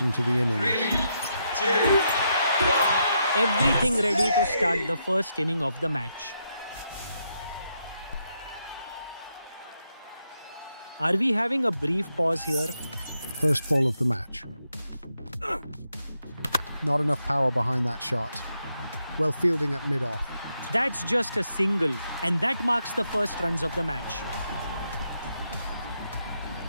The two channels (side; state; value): both; inverted; correlation -0.81